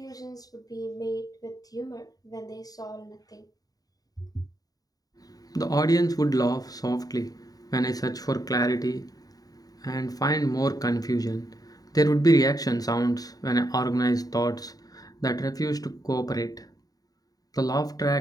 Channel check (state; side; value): late; right; 0.18 ms